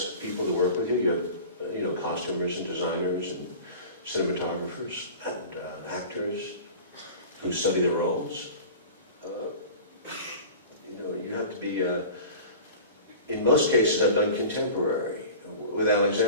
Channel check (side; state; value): both; inverted; correlation -0.38